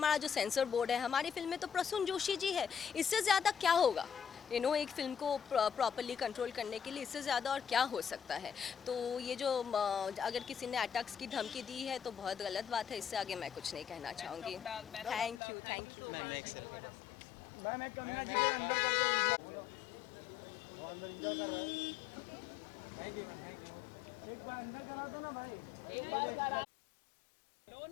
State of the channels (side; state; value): right; drops out; at 15.4 s